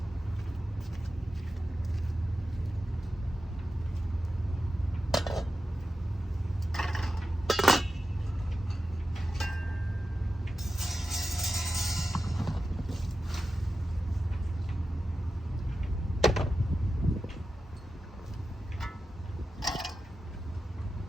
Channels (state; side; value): normal; both; correlation 0.92